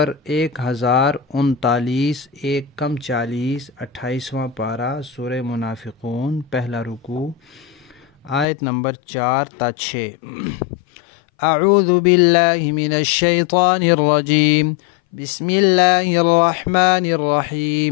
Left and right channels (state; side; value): drops out; right; at 8.5 s